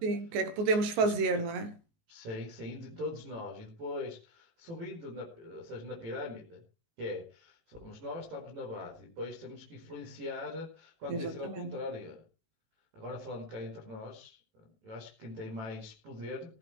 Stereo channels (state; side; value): late; left; 19 ms